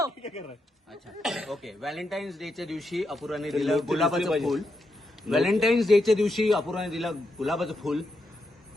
अच्छा ओके. व्हॅलेंटाईन्स डेच्या दिवशी अपूर्वाने दिलं गुलाबाचं फुल. व्हॅलेंटाईन्स डेच्या दिवशी अपूर्वाने दिलं गुलाबाचं फुल.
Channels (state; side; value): normal; both; correlation 0.84